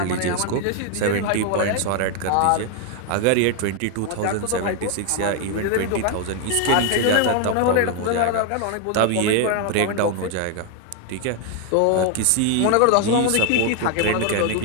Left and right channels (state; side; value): different; both; correlation 0.01